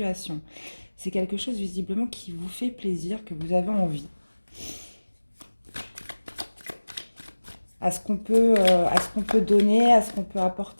C'est quelque chose visiblement qui vous fait plaisir, que vous avez envie. À ce qu'on peut donner, à ce qu'on peut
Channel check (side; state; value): both; inverted; correlation -1.00